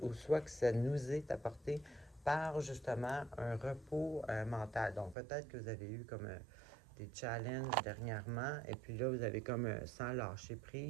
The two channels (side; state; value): left; drops out; at 5.2 s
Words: ou soit que ça nous est apporté par justement un repos mental. Donc, peut-être que vous avez eu comme des challenges dernièrement, et puis là, vous avez comme sans lâcher